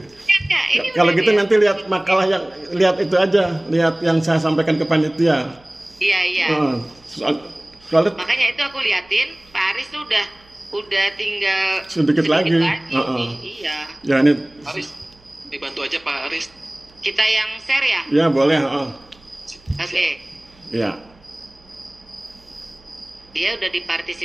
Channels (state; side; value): noise; right; hum, 29 dB below the sound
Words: Ya, ini Kalau udah gitu dia. nanti lihat makalah yang lihat itu aja, lihat yang saya sampaikan ke panitia. Iya. Soalnya Makanya itu aku liatin, Pak Aris tuh udah tinggal sedikit lagi. nih. Iya. Ya ini. Aris, dibantu aja Pak Aris. Kita yang share ya? Ya boleh. Oke. Ya. Dia udah